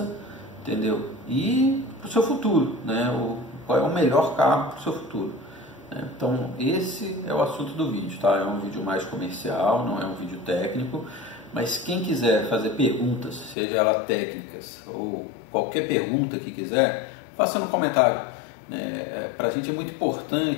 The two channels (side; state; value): right; drops out; at 13.6 s